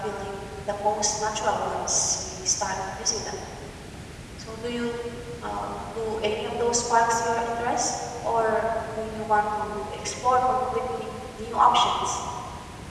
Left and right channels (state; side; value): identical; both; correlation 1.00